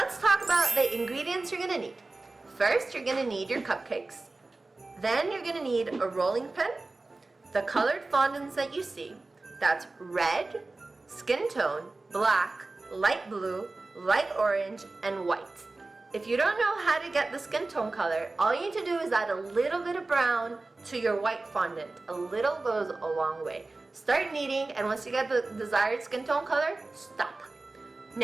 talk about the ingredients you're going to need. First, you're going to need your cupcakes. Then you're going to need a rolling pin, the colored fondants that you see. That's red, skin tone, black, light blue, light orange, and white. If you don't know how to get the skin tone color, all you need to do is add a little bit of brown to your white fondant. A little goes a long way. Start kneading, and once you get the desired skin tone color, stop.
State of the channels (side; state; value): left; quieter; 3.3 dB